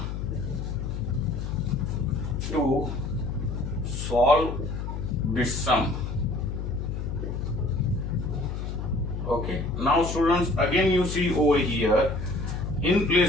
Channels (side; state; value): left; noise; hum, 4 dB below the sound